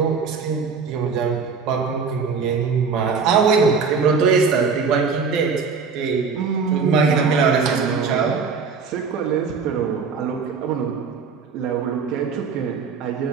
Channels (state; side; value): quieter; left; 5.3 dB